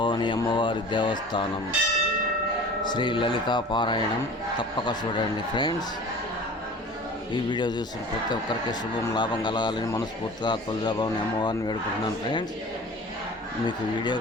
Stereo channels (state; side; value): normal; both; correlation 0.41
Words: అమ్మవారి దేవస్థానం శ్రీ లలితా పారాయణం తప్పక చూడండి ఫ్రెండ్స్. ఈ వీడియో చూసిన ప్రతి ఒక్కరికి శుభం లాభం కలగాలని మనస్ఫూర్తిగా తులజాభవాని అమ్మవారిని వేడుకుంటున్నాను ఫ్రెండ్స్. మీకు వీడియో